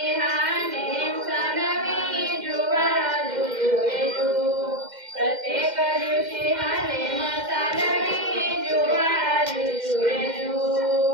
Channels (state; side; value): late; left; 2.1 ms